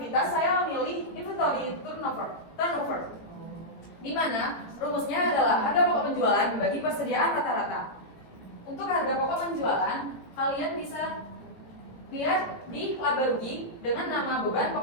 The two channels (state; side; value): late; right; 17 ms